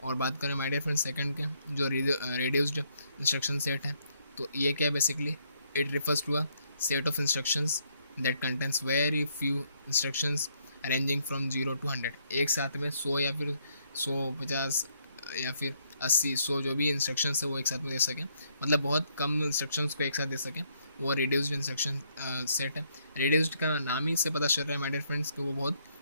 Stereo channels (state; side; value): inverted; both; correlation -0.71